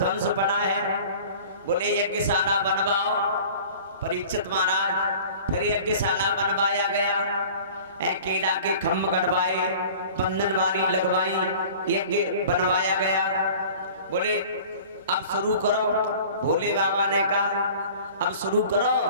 पड़ा है। बोले यज्ञशाला बनवाओ। परीक्षित महाराज फिर यज्ञशाला बनवाया गया, केला के खम्भ गड़वाए, बंधनवारी लगवाई, यज्ञ बनवाया गया। बोले अब शुरू करो। भोले बाबा ने कहा अब शुरू करो।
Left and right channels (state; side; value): inverted; both; correlation -0.44